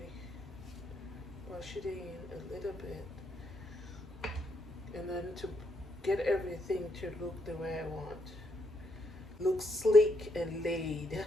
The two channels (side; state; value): both; normal; correlation 0.76